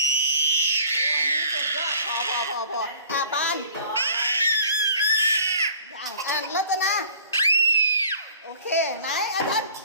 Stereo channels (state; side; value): inverted; both; correlation -0.51